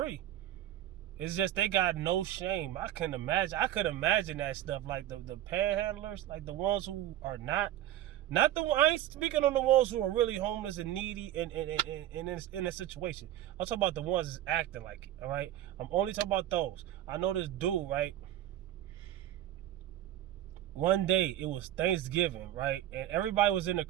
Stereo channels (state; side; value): quieter; left; 12.9 dB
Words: It's just they got no shame. I could imagine that stuff, like the panhandlers, like the ones who are not the. I ain't speaking on the ones who are really homeless and needy and in a situation. I'm talking about the ones that's acting like it. All right, I'm only talking about those. I know this dude, right? One day it was Thanksgiving, right? And everybody was in the